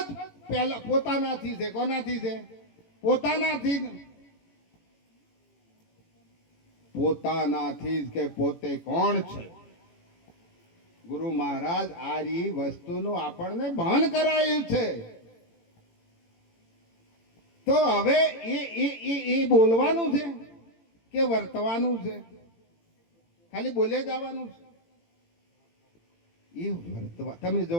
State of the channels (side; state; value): right; late; 18 ms